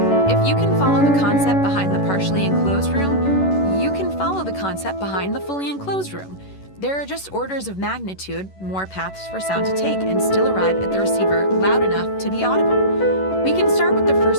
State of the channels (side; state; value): right; late; 11 ms